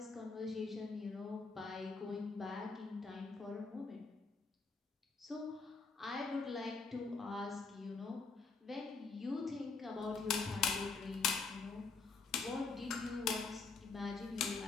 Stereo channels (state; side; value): quieter; right; 4.5 dB